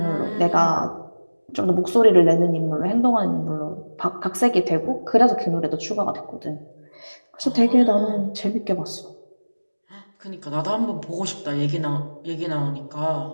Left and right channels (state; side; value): inverted; both; correlation -1.00